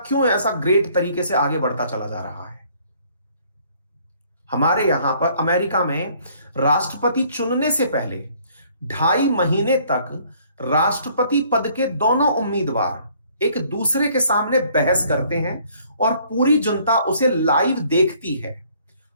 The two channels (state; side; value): inverted; both; correlation -0.61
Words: ऐसा ग्रेट तरीके से आगे बढ़ता चला जा रहा है? हमारे यहां पर अमेरिका में राष्ट्रपति चुनने से पहले 2.5 महीने तक राष्ट्रपति पद के दोनों उम्मीदवार एक दूसरे के सामने बहस करते हैं और पूरी जनता उसे लाइव देखती है।